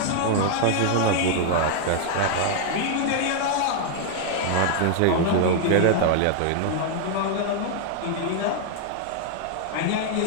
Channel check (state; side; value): different; both; correlation 0.00